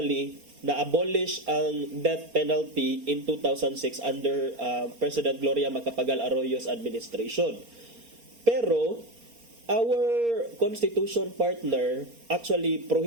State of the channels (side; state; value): left; late; 4.3 ms